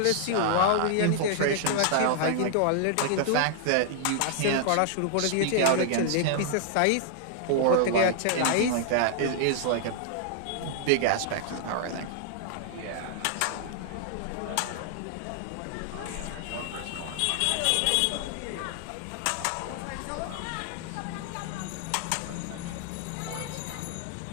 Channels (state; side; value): different; both; correlation -0.01